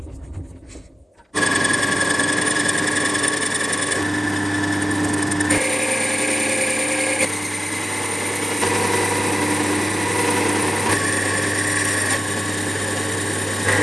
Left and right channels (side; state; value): both; normal; correlation 0.90